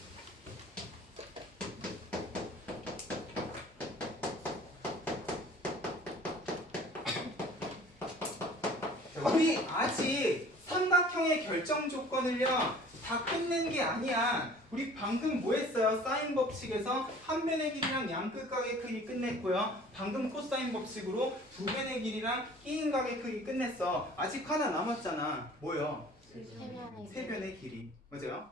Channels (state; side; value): normal; both; correlation 0.48